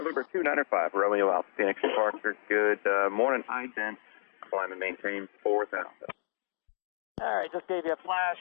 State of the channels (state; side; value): silent; right; digital silence